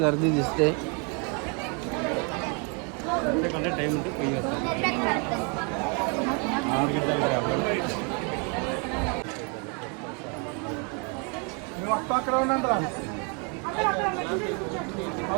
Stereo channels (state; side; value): quieter; left; 35.8 dB